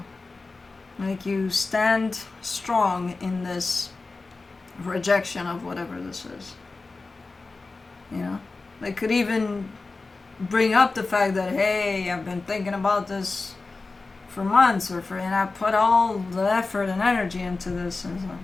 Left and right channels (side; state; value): right; quieter; 3.7 dB